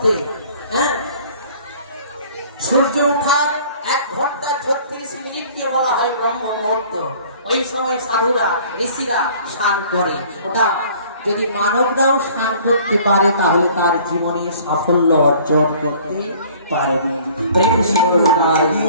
সূর্য ওঠার 1 ঘন্টা 36 মিনিটকে বলা হয় ব্রহ্ম মুহূর্ত। ওই সময় সাধুরা ঋষিরা স্নান করে। ওটা যদি মানবরাও স্নান করতে পারে তাহলে তার জীবনে সাফল্য অর্জন করতে পারবে।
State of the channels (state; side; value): inverted; both; correlation -0.52